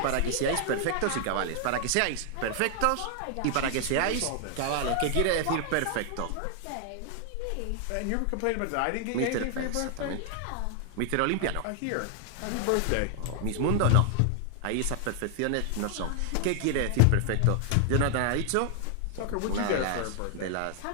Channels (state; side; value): different; both; correlation 0.00